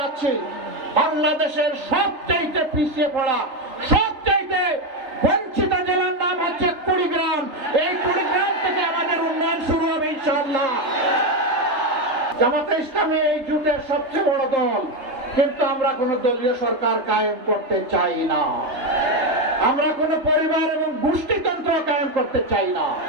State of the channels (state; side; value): late; left; 3.3 ms